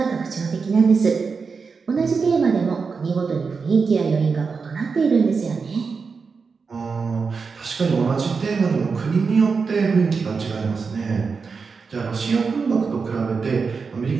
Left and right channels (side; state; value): left; quieter; 5.1 dB